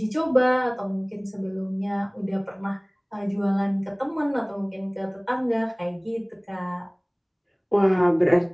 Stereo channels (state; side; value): identical; both; correlation 1.00